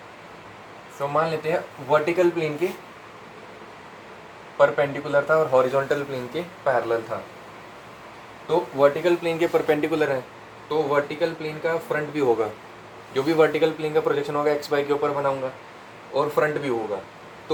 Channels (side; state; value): both; identical; correlation 1.00